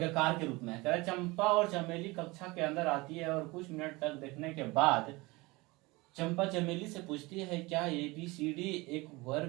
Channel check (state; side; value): quieter; left; 23.1 dB